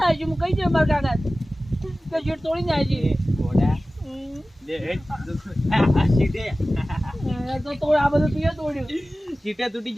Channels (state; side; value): normal; both; correlation 0.96